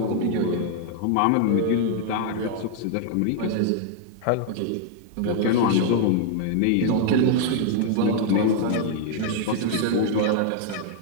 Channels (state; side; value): different; both; correlation 0.00